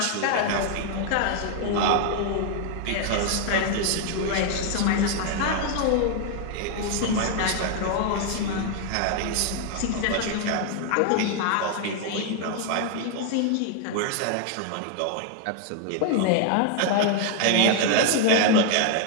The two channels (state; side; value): different; both; correlation 0.01